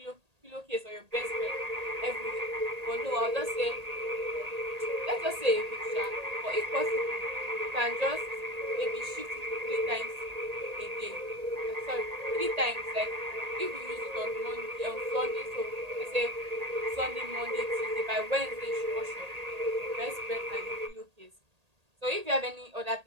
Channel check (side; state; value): left; late; 1.8 ms